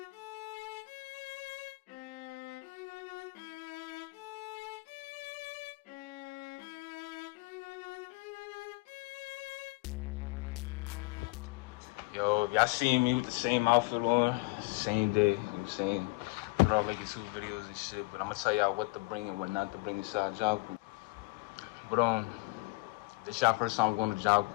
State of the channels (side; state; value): right; quieter; 24.5 dB